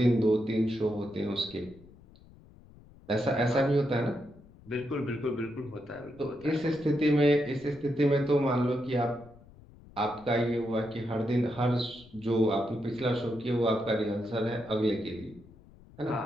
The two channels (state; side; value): noise; left; rumble, 23 dB below the sound